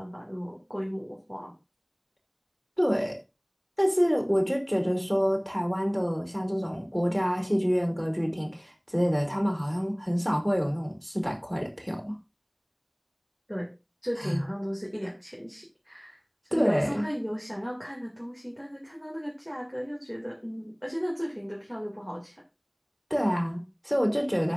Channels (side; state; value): both; identical; correlation 1.00